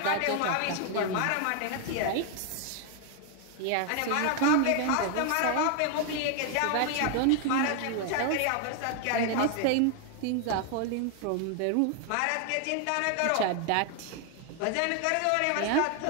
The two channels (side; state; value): both; different; correlation 0.00